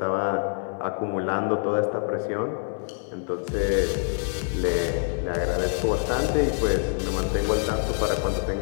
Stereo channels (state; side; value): silent; right; 61 dB below the other